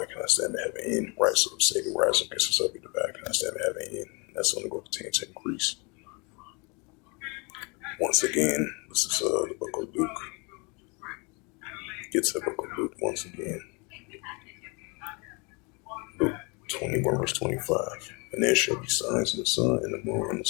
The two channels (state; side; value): quieter; right; 30.7 dB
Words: can I stand to heaven end? Right, so if Satan rise up against himself, be divided, can I stand to heaven end? That's only going to continue to increase. Once again, this is the book of Luke. Get to the book of Luke once again. Luke 21, verse 25. And there shall be signs in the sun, and the moon, and the